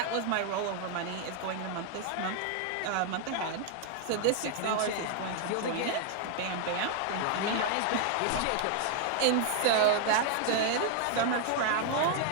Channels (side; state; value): both; different; correlation 0.00